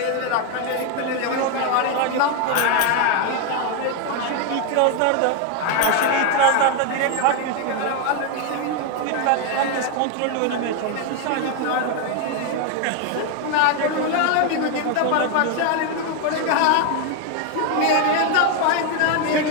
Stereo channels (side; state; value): both; different; correlation 0.01